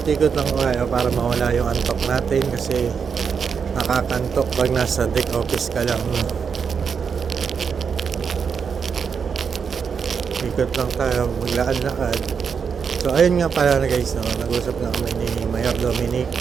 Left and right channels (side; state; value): left; quieter; 6.3 dB